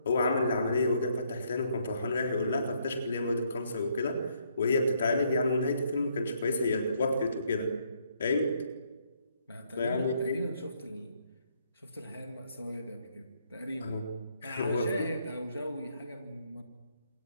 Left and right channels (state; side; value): inverted; both; correlation -0.71